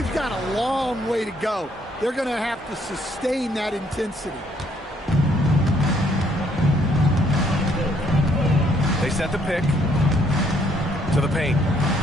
got a long way to go. They're going to have to sustain that intensity. They set the pick to the paint.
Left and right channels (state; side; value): normal; both; correlation 0.68